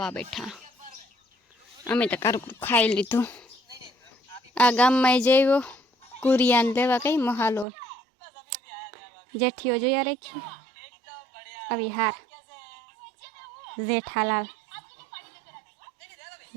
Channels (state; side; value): drops out; left; at 7.7 s